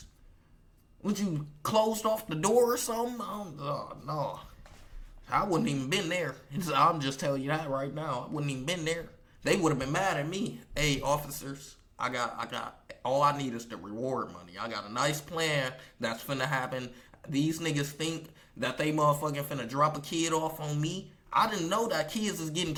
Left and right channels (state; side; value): identical; both; correlation 1.00